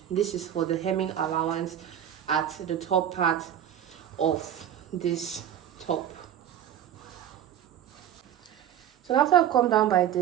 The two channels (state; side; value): quieter; left; 10.4 dB